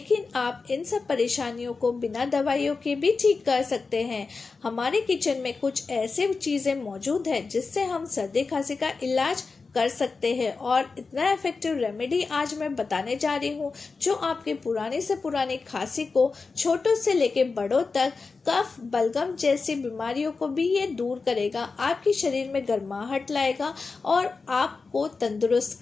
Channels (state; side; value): quieter; right; 4.4 dB